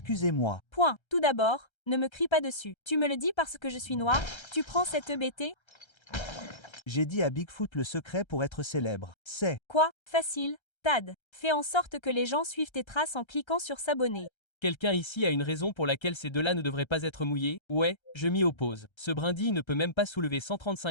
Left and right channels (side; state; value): right; late; 1.3 ms